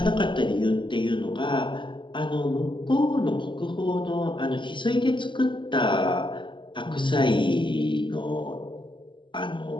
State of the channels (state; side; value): late; right; 0.23 ms